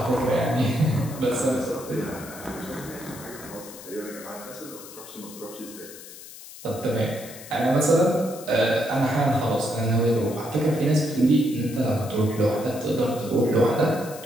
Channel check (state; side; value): noise; left; hiss, 16 dB below the sound